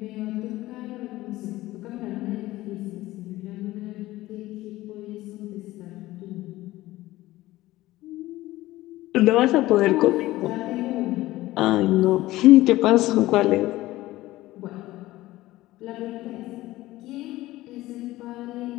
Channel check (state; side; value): quieter; right; 17.1 dB